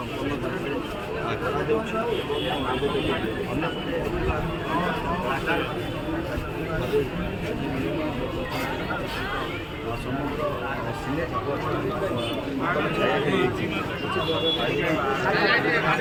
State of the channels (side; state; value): both; identical; correlation 1.00